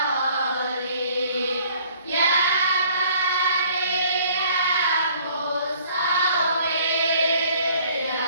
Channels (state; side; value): inverted; both; correlation -0.57